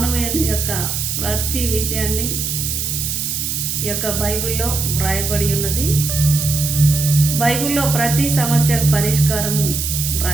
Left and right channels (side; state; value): right; noise; hiss, 2 dB below the sound